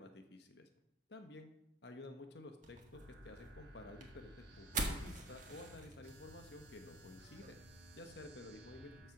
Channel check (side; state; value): both; normal; correlation 0.41